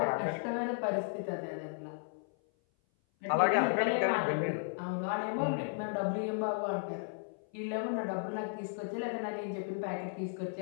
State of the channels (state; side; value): silent; right; 55 dB below the other